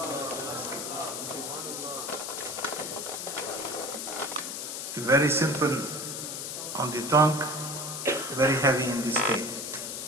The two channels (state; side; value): noise; left; hiss, 5 dB below the sound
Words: Very simple on the tongue, very heavy in the scale.